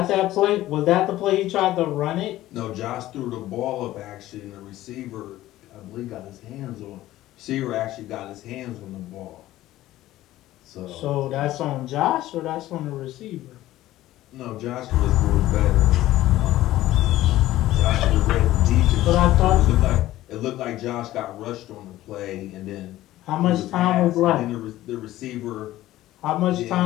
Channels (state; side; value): quieter; right; 15.3 dB